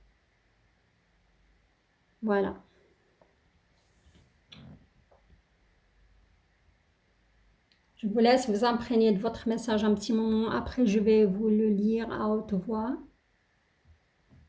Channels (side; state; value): both; identical; correlation 1.00